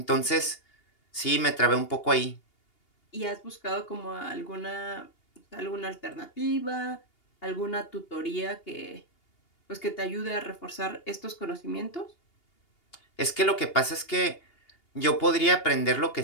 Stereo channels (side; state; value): right; late; 2.8 ms